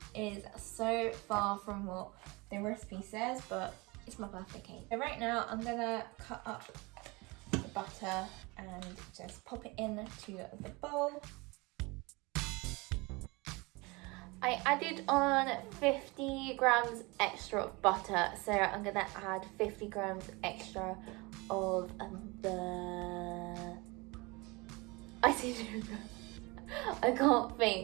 is so far from what the recipe says, but it's my birthday cake. So right now I'm gonna cut up the butter and just pop it into the bowl. I added on 50 grams extra of butter, so I'm gonna add 50 grams extra of the icing sugar. I can't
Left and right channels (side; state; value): left; quieter; 25.5 dB